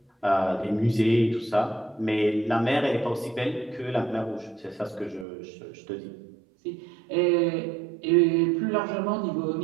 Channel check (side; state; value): left; drops out; at 5.2 s